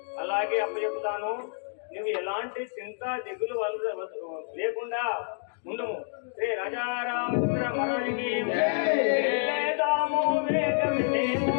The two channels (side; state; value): right; silent; 59 dB below the other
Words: అలాగే అప్పచెప్తాను. నువ్వు ఎలాంటి చింత దిగులు లేకుండా ఉండము. శ్రీ రాజారామచంద్ర మహారాజుకి వెళ్ళేదాము వేగమినేము,